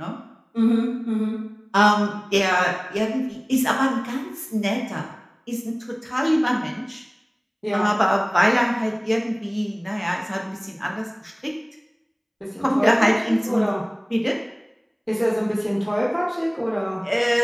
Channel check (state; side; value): identical; both; correlation 1.00